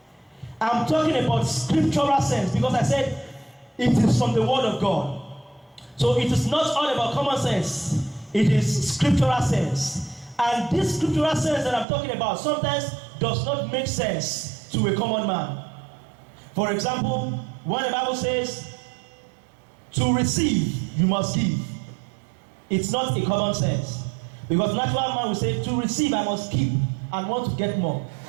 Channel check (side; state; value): left; drops out; at 11.9 s